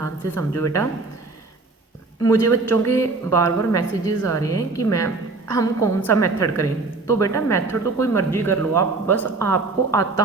से समझो बेटा, मुझे बच्चों के बार बार मैसेजेस आ रहे हैं कि मैम हम कौन सा मेथड करें। तो बेटा मेथड तो कोई मर्जी कर लो आप, बस आपको आता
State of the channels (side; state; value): left; quieter; 3.7 dB